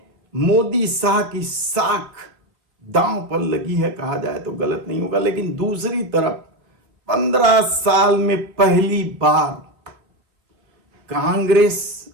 मोदी शाह की साख दांव पर लगी है, कहा जाए तो गलत नहीं होगा। लेकिन दूसरी तरफ 15 साल में पहली बार कांग्रेस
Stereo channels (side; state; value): left; late; 3.2 ms